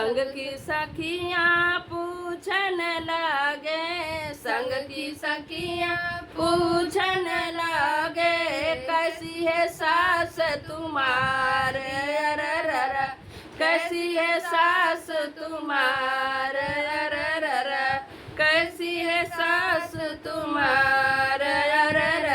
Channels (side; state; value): both; identical; correlation 1.00